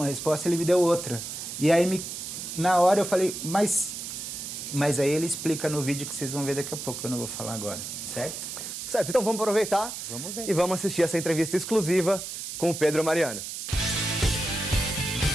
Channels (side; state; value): right; noise; hiss, 7 dB below the sound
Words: resposta, ele me deu outra. E aí, na hora eu falei, mas aí ele explica no vídeo que vocês vão ver daqui a pouco, eu não vou falar agora, certo? Certo, então vamos aproveitar e vamos assistir essa entrevista exclusiva com o Pedro Mariano.